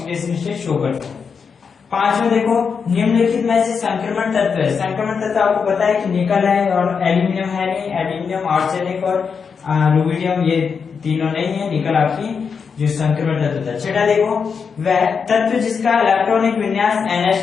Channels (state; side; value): quieter; right; 5.9 dB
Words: स्टेट शो करते हैं। पांचवें देखो, निम्नलिखित में से संक्रमण तत्व है। संक्रमण तत्व आपको पता है कि निकल है और एल्यूमिनियम है नहीं, एल्यूमिनियम, आर्सेनिक और रुबिडियम ये तीनों नहीं है, निकल आपकी जो संक्रमण तत्व होता है। छठा देखो, वह तत्व जिसका इलेक्ट्रॉनिक विन्यास